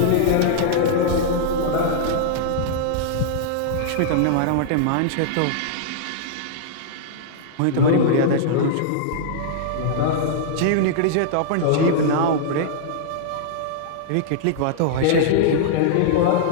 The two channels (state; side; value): different; both; correlation -0.02